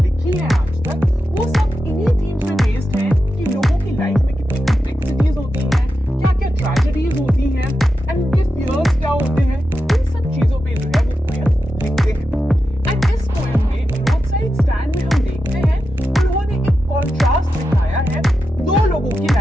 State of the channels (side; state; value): both; normal; correlation 0.89